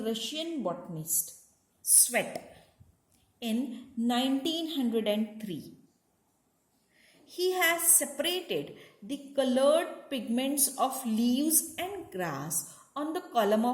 Russian botanist Svet in 1903. He has separated the colored pigments of leaves and grass on the column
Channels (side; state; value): both; identical; correlation 1.00